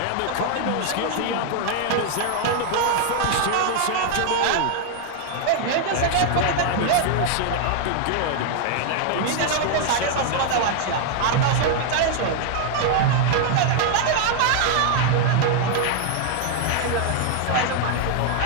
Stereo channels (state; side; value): different; both; correlation 0.00